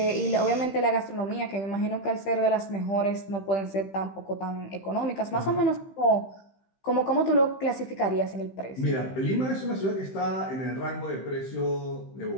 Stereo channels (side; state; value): right; late; 15 ms